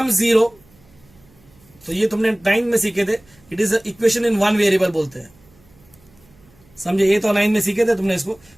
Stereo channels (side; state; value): right; noise; hum, 30 dB below the sound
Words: 0, तो ये तुमने 9 में सीखे थे, it is equation in one variable बोलते हैं. समझे, ये तो 9 में सीखे थे तुमने इसको.